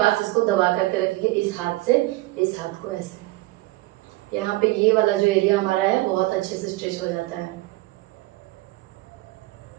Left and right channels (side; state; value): left; quieter; 19.4 dB